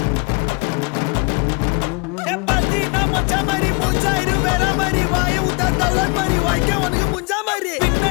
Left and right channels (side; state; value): right; quieter; 30.5 dB